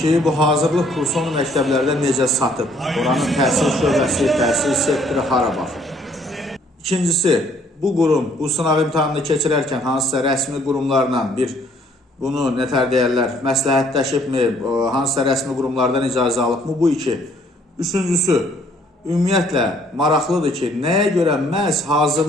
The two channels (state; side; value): normal; both; correlation 0.63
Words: bu hazırlıq kursunu məktəblərdə necə satıb, oranın təhsil şöbəsi, təhsil sektoru hara baxır. İkincisi, bu qurum bu sınaq imtahanını keçirərkən hansısa rəsmi qurumlarla bunu nətər deyərlər, məsləhətləşibmi, hansısa rəsmi qurumlardan icazə alıbmı, bu iki. Üçüncüsü, ümumiyyətlə maraqlıdır ki, nəyə görə məhz